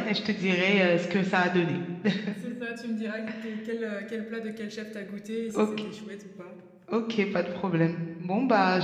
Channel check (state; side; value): identical; both; correlation 1.00